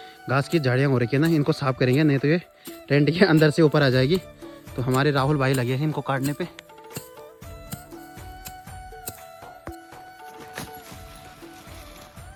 घास की झाड़ियाँ हो रखी है ना, इनको साफ करेंगे, नहीं तो ये टेंट के अंदर से ऊपर आ जाएगी। तो हमारे राहुल भाई लगे हैं इनको काटने पे।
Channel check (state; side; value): identical; both; correlation 1.00